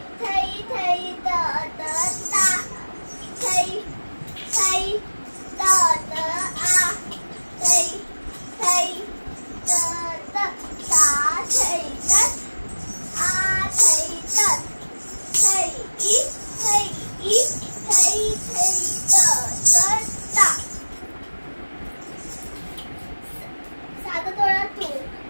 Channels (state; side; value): inverted; both; correlation -1.00